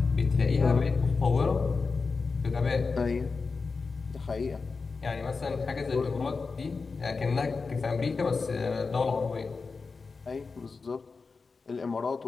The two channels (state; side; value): quieter; right; 4.5 dB